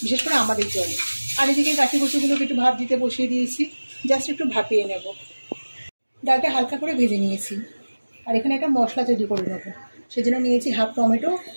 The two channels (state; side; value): inverted; both; correlation -1.00